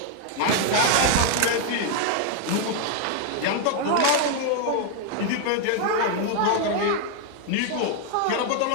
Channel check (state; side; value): different; both; correlation 0.00